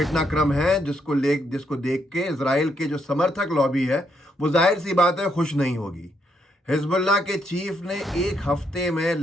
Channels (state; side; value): normal; both; correlation 0.76